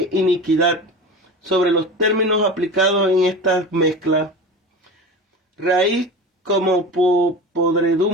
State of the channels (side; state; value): both; normal; correlation 0.31